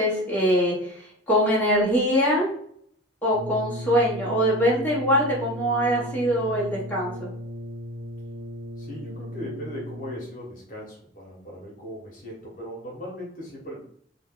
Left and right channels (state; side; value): normal; both; correlation 0.31